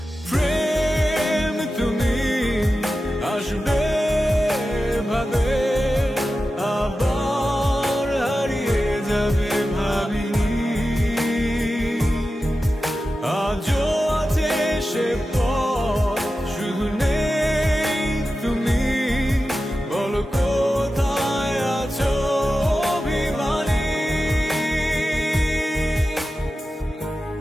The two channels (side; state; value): both; normal; correlation 0.93